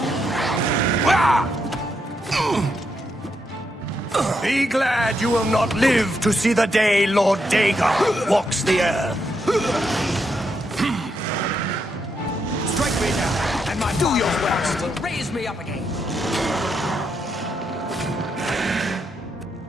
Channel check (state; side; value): normal; both; correlation 0.80